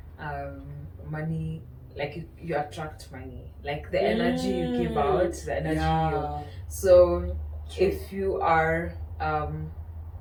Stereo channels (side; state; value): both; identical; correlation 1.00